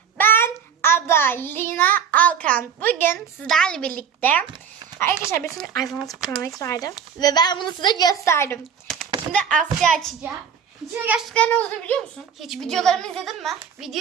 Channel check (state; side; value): quieter; left; 7.4 dB